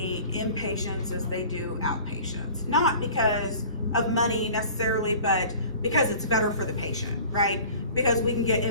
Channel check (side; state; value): both; inverted; correlation -0.45